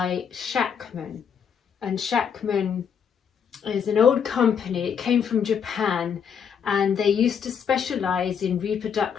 Shackman, and Shackman is an old company. It came from Japan, and they used to specialize in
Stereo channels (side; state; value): right; quieter; 7.4 dB